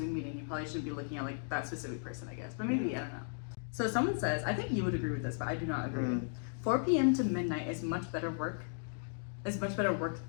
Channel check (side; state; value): right; silent; digital silence